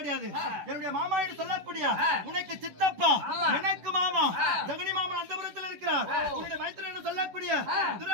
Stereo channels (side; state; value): left; late; 10 ms